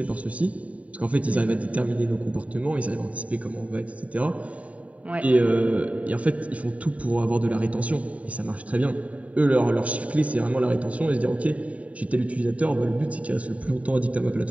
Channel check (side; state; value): left; late; 0.068 ms